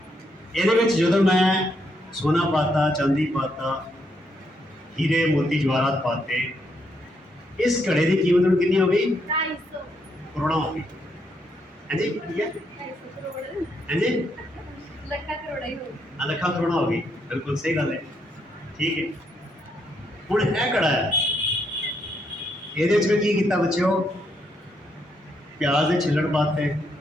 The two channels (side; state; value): both; normal; correlation 0.76